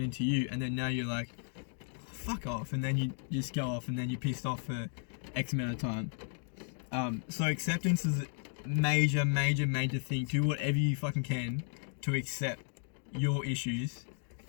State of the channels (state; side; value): silent; right; 55 dB below the other